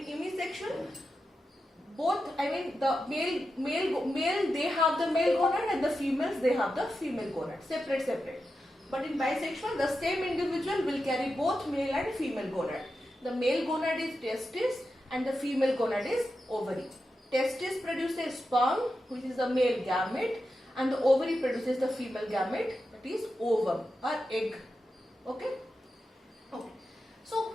unisexual, both, I mean, the male they have the male gonad, and the females, they have the female gonad, separate. But in bisexual, the same individual will carry both male and female gonad. The male gonad is testis and the female gonad is ovary. Testis produces sperm, which is the male gamete, and the ovary produces the female gamete, that is ovum or egg. Okay? Okay. So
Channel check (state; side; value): normal; both; correlation 0.89